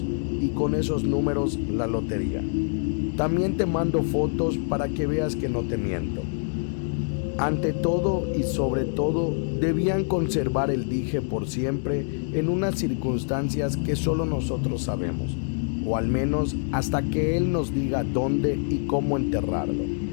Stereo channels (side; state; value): right; silent; 59 dB below the other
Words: y con esos números la lotería. También te mando fotos para que veas que no te miento. Ante todo y sobre todo, debían conservar el dije por siempre en unas circunstancias que solo nosotros sabemos, o al menos hasta que él nos diga dónde y cómo enterrarlo.